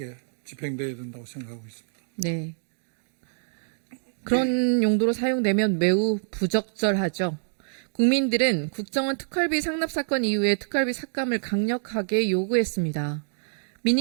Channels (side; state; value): left; silent; digital silence